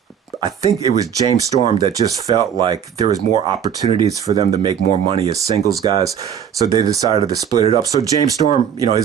think it was James Storm that just felt like there was more opportunities for them to make more money as singles guys. So they decided to split it up. So James Storm,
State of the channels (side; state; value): left; quieter; 8.5 dB